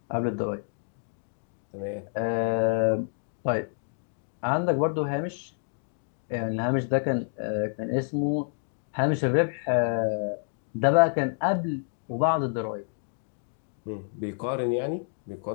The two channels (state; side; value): silent; right; digital silence